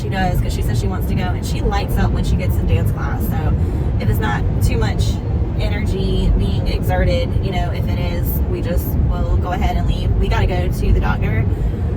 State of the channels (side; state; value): both; identical; correlation 1.00